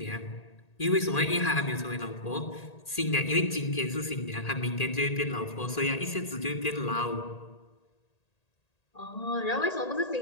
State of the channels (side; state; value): right; late; 1.8 ms